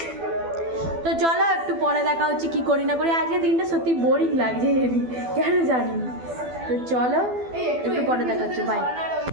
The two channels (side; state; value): left; late; 12 ms